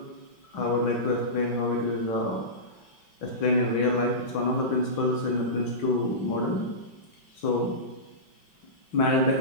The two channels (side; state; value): right; late; 5.3 ms